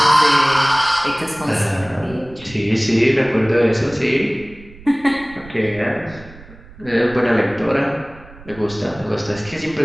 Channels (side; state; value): right; noise; rumble, 20 dB below the sound